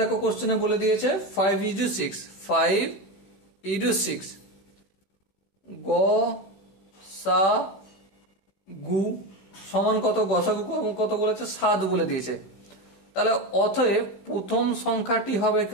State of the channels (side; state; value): right; late; 15 ms